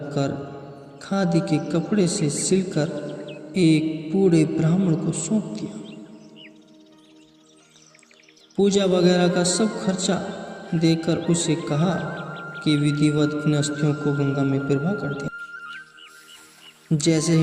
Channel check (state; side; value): identical; both; correlation 1.00